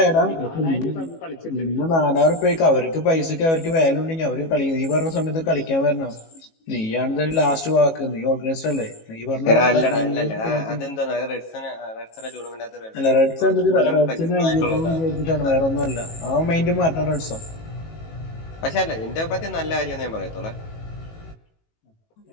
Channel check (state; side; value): late; right; 18 ms